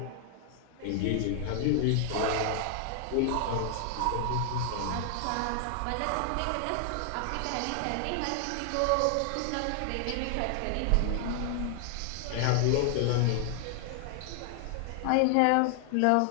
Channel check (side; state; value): both; different; correlation 0.00